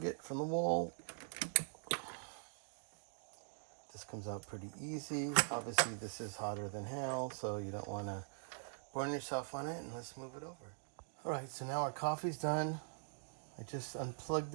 it from the wall. This comes out pretty easy. Obviously, this is hotter than hell, so you don't want to burn yourself on it. And let's move it over. All right, so now our coffee's done. I just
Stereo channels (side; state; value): left; silent; digital silence